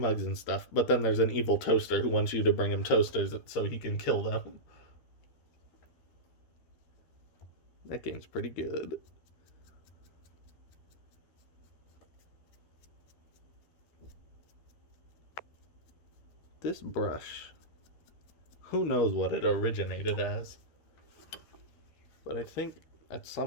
and stuff, but then there's an evil toaster who wants you to bring him toasters so he can kill them. That game's pretty good. This brush, who knows what it originated as, but I think at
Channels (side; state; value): right; late; 12 ms